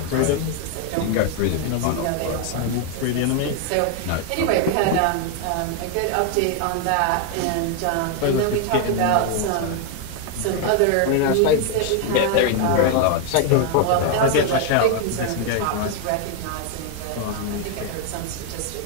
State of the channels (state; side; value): different; both; correlation 0.01